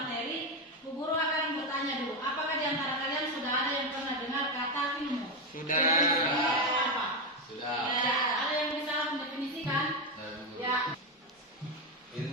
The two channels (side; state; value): both; normal; correlation 0.09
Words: Bu Guru akan bertanya dulu, apakah di antara kalian sudah ada yang pernah dengar kata ilmu? Sudah. Definisinya apa? Sudah. Ya, ada yang bisa mendefinisikan? Ya.